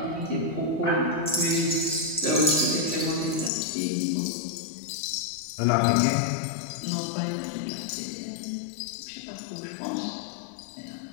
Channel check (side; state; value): right; drops out; at 3.5 s